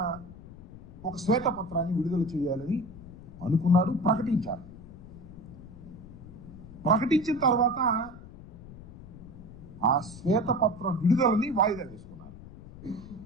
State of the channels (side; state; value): left; noise; rumble, 16 dB below the sound